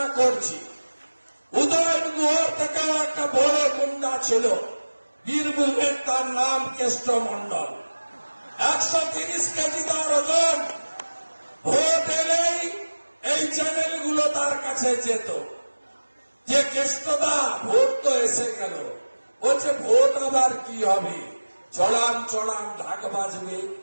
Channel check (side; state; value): both; inverted; correlation -1.00